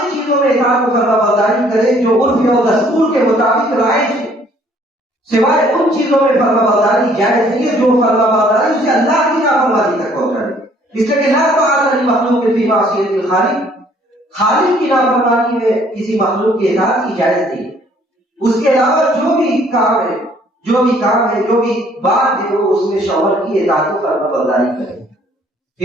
چیزوں میں اطاعت و فرمانبرداری کرے جو عرف اور دستور کے مطابق رائج ہے، سوائے ان چیزوں میں فرمانبرداری جائز نہیں ہے جو فرمانبرداری اسے اللہ کی نافرمانی تک پہنچائے۔ اس لیے کہ لا طاعۃ لمخلوق فی معصیۃ الخالق، خالق کی نافرمانی میں کسی مخلوق کی اطاعت کی جائز نہیں ہے۔ اس کے علاوہ جو بھی کام ہے، جو بھی بات ہے، وہ اس میں شوہر کی اطاعت و فرمانبرداری کرے۔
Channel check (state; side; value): normal; both; correlation 0.60